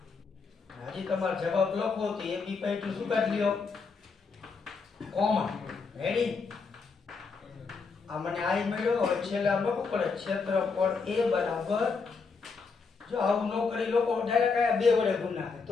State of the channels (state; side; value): quieter; right; 4.8 dB